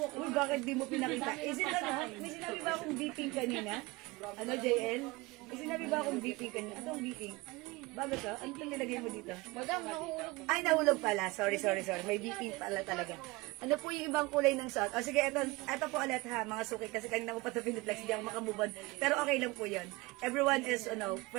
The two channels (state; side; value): quieter; left; 22.9 dB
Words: Uy, bakit di mo pinakita? May sinabi ba akong beeping kanina? JL? May sinabi ba akong beeping kanina? Anong beeping? Bago to? Ano itong nilagay mo dito? Madam, nahulog. Ay, nahulog pala. Sorry. May BP pala talaga. Ano po yung ibang kulay ng suot? O sige, eto po ulit ha, mga suki. Kasi kanina ko pa ito piniplex, hindi ako makamove on. Pero okay lang po yun. Everyone is,